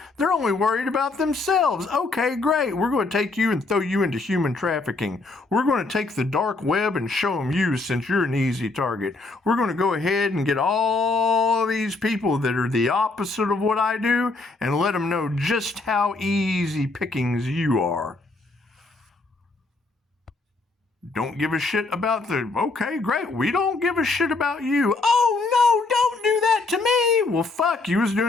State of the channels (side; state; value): right; quieter; 3.5 dB